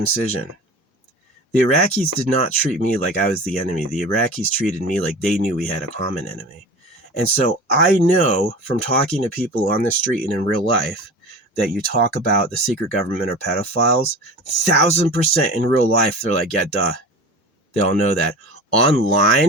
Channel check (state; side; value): normal; both; correlation 0.34